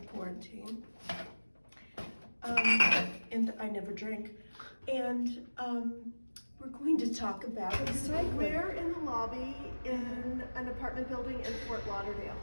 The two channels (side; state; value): both; inverted; correlation -1.00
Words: And I never drink. And we're going to talk about recycling. We're in the lobby in an apartment building in Fort Lauderdale.